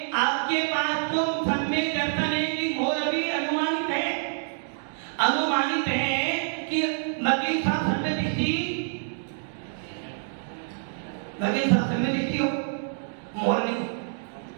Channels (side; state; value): left; silent; digital silence